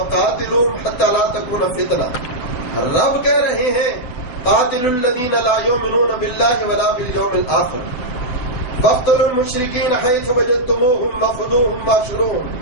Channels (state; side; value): late; right; 7.9 ms